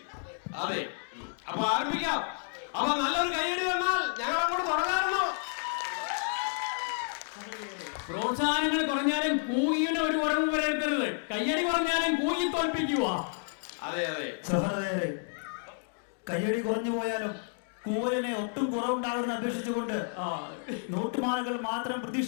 അതെ. അപ്പൊ ആരംഭിക്കാം. അപ്പൊ നല്ലൊരു കൈയടി തന്നാൽ ഞങ്ങൾ അങ്ങോട്ട് തുടങ്ങാറുണ്ടോ? പ്രോത്സാഹനങ്ങൾ കുറഞ്ഞാലും കൂകിന് ഒരു കുറവ് വരരുത്തരുത്. കയ്യടി കുറഞ്ഞാലും കൂകി തോൽപ്പിക്കുക. അതെ. സഹോദരരെ, കയ്യടി കുറഞ്ഞു പോയാലും കൂവലിനെ ഒട്ടും കുറവുണ്ടാകുമെന്ന് അപേക്ഷിച്ചുകൊണ്ട് നോട്ടുമാലകൾ മാത്രം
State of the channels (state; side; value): silent; right; 57 dB below the other